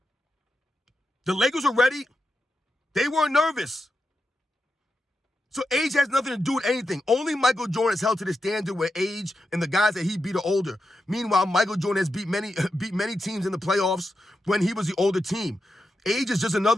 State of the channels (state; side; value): normal; both; correlation 0.88